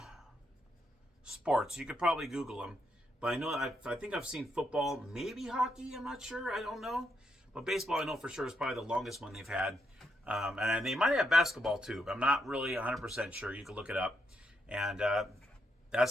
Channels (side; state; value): both; normal; correlation 0.79